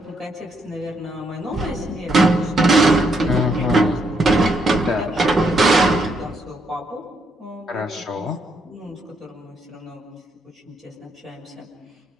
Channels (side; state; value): both; normal; correlation 0.75